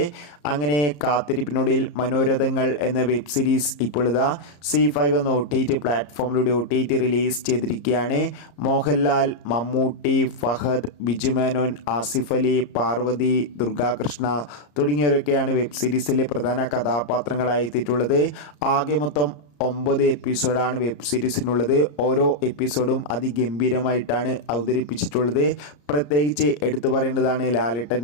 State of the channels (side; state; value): right; late; 34 ms